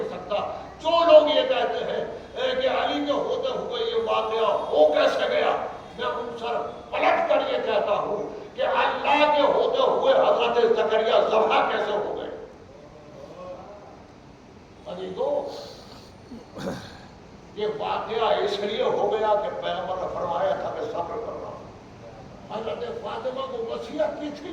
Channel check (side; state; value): both; identical; correlation 1.00